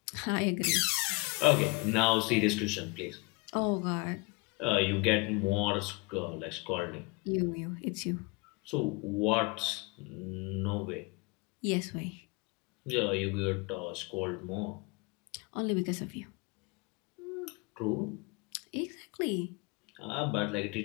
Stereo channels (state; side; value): quieter; right; 26.9 dB